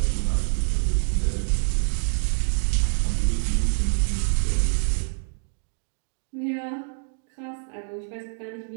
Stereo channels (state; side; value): silent; left; digital silence